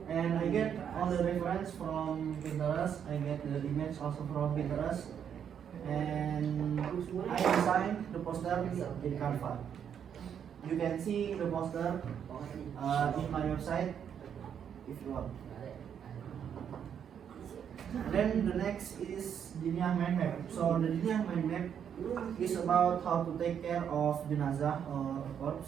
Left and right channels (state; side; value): quieter; left; 8.3 dB